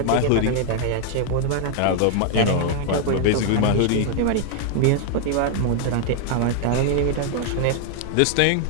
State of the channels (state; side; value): different; both; correlation 0.00